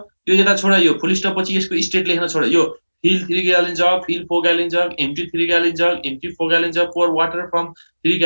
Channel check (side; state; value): both; inverted; correlation -1.00